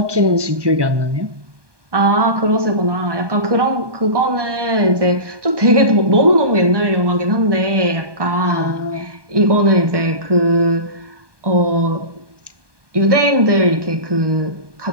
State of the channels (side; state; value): left; late; 1.2 ms